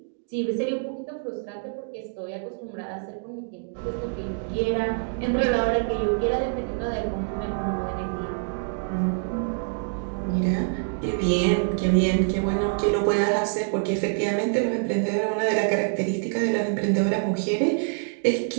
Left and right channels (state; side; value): silent; left; digital silence